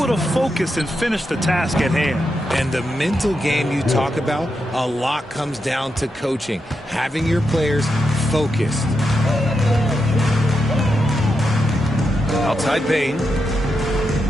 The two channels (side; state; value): both; normal; correlation 0.85